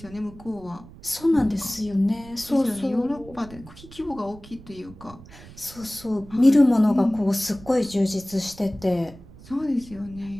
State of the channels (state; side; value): noise; right; rumble, 19 dB below the sound